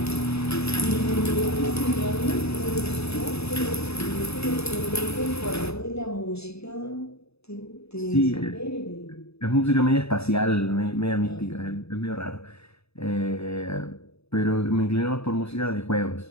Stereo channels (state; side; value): late; right; 0.79 ms